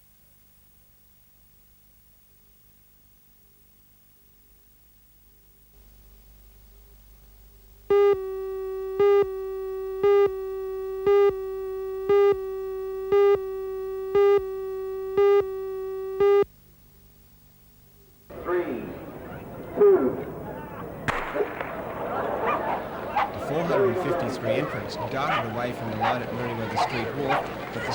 Darted away from the line at Meriwether Street Wharf, but they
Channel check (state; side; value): identical; both; correlation 1.00